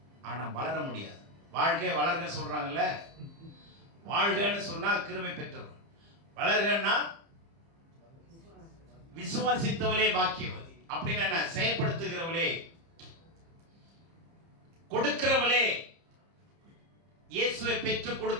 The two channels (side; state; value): left; late; 30 ms